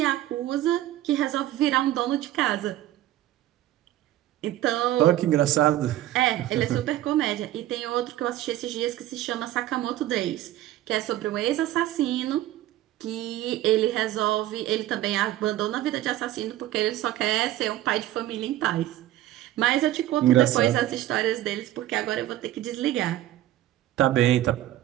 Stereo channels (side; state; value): left; quieter; 14.2 dB